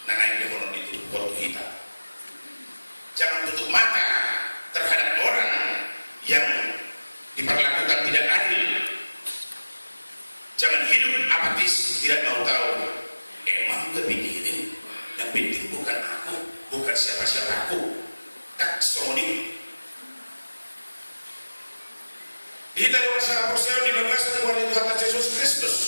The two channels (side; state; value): both; inverted; correlation -1.00